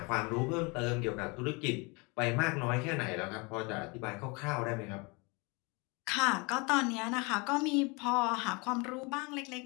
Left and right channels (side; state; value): right; quieter; 28.8 dB